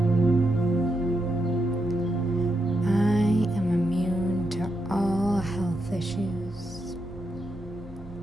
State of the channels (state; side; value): normal; both; correlation 0.83